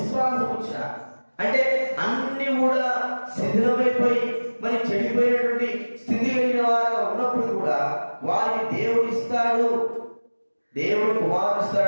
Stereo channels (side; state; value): both; inverted; correlation -1.00